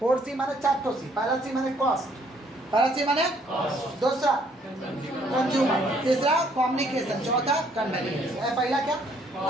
माने 4 सी। पहला सी माने कॉस्ट, पहला सी माने दूसरा कंज्यूमर, तीसरा कम्युनिकेशन, चौथा कन्वीनियंस। पहला क्या?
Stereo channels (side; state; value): both; normal; correlation 0.65